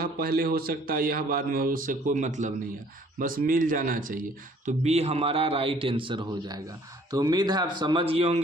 पहले हो सकता है, यह बाद में हो, उससे कोई मतलब नहीं है, बस मिल जाना चाहिए, तो बी हमारा राइट आंसर हो जाएगा। तो उम्मीद है आप समझ गए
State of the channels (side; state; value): both; normal; correlation 0.57